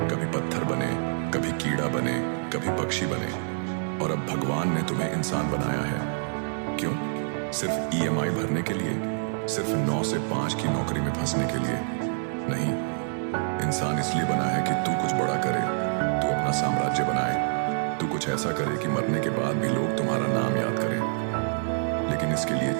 कभी पत्थर बने, कभी कीड़ा बने, कभी पक्षी बने, और अब भगवान ने तुम्हें इंसान बनाया है। क्यों? सिर्फ EMI भरने के लिए? सिर्फ 9 से 5 की नौकरी में फंसने के लिए? नहीं, इंसान इसलिए बना है कि तू कुछ बड़ा करे, तू अपना साम्राज्य बनाए, तू कुछ ऐसा करे कि मरने के बाद भी लोग तुम्हारा नाम याद करें। लेकिन इसके लिए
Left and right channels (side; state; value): left; silent; 60 dB below the other